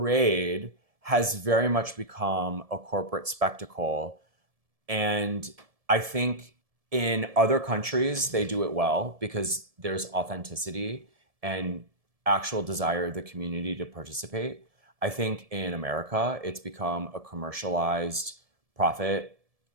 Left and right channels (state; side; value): late; left; 1.7 ms